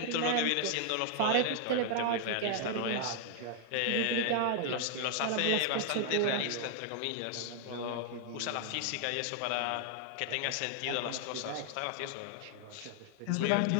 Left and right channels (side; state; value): both; different; correlation 0.00